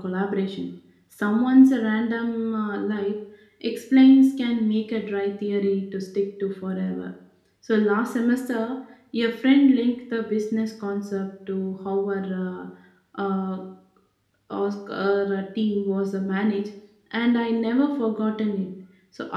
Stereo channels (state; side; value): identical; both; correlation 1.00